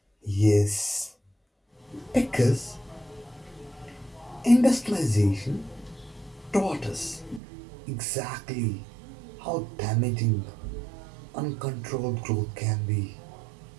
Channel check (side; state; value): left; drops out; at 7.4 s